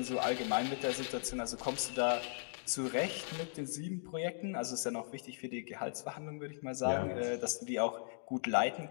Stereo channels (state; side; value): silent; right; digital silence